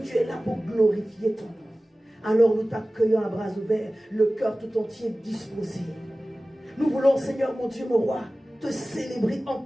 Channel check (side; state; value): both; normal; correlation 0.97